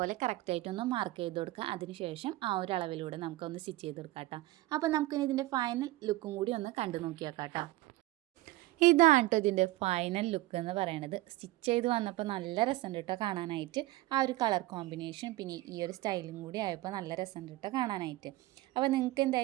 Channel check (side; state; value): left; quieter; 18.0 dB